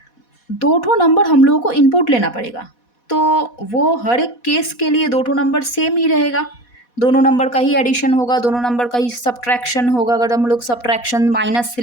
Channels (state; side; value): late; right; 4.1 ms